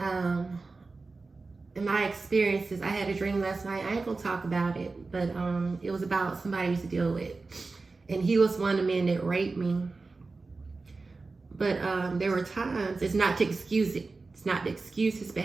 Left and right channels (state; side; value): quieter; left; 3.8 dB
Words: in my experiences, I had a dream last night. I ain't gonna talk about it, but it was about somebody I used to deal with. And he was one of the men that raped me. But there were times, it's not to excuse it. It's not to excuse his